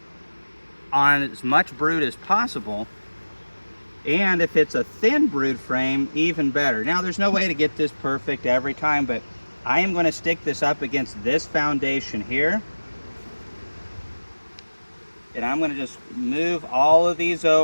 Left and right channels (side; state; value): both; inverted; correlation -1.00